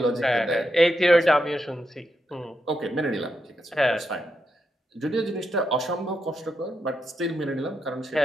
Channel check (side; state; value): both; normal; correlation 0.84